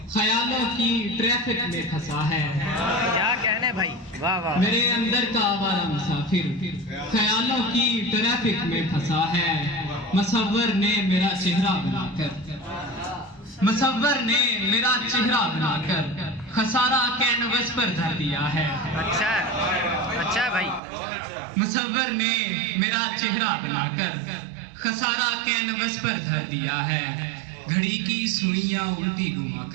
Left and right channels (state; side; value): drops out; left; at 20.8 s